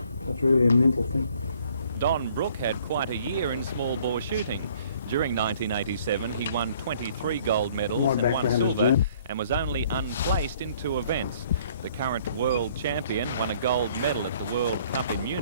That's really a mental thing. Don Brooke had quite a year in small bore shooting. During 1987, he won 23 gold medals and 1 silver and was only unplaced in 2 events. The current world champion won a gold medal at the World Cup in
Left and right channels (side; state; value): both; inverted; correlation -0.59